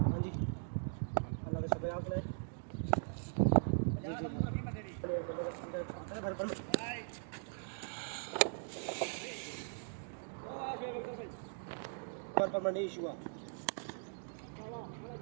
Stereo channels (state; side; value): silent; left; digital silence